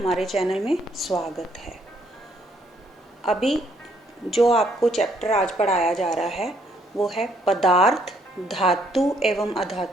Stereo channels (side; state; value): both; normal; correlation 0.68